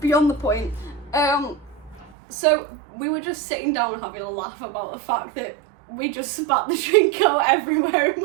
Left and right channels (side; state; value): left; drops out; at 2.1 s